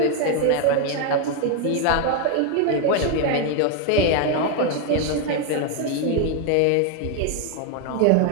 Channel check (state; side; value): different; both; correlation 0.01